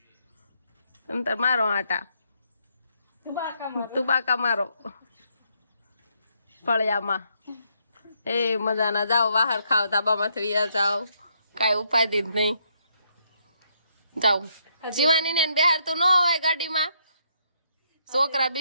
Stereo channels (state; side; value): inverted; both; correlation -0.74